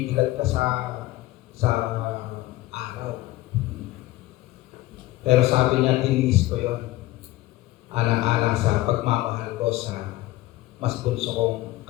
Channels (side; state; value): right; quieter; 17.3 dB